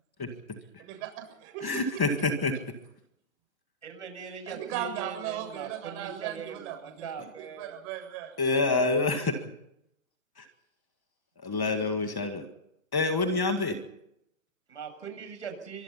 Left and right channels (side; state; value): right; late; 1.1 ms